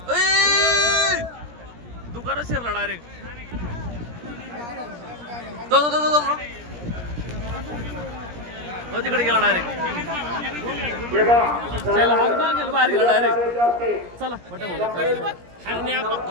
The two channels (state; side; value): late; left; 17 ms